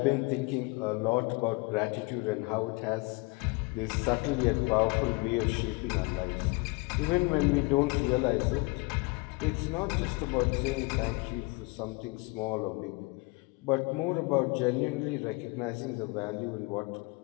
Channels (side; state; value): right; quieter; 26.7 dB